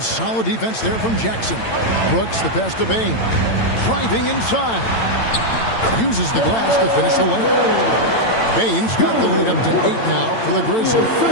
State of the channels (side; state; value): right; late; 8.9 ms